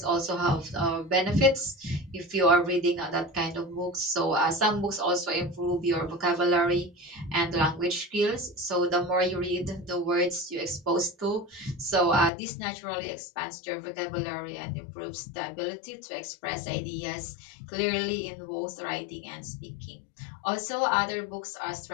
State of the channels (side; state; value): right; drops out; at 12.3 s